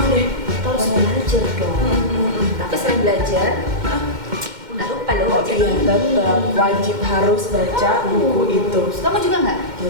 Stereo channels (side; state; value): left; late; 2.1 ms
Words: deh. Kita harus belajar dong. Tapi selain belajar, Nggak lupa loh. Oh iya, tetap wajib harus baca buku itu. Kamu juga nggak?